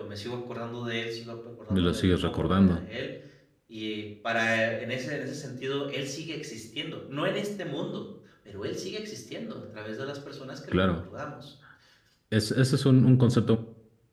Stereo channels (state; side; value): identical; both; correlation 1.00